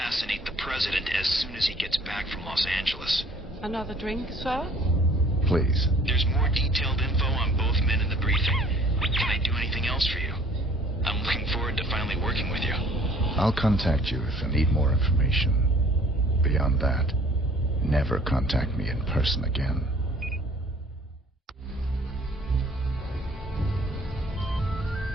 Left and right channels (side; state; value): both; normal; correlation 0.54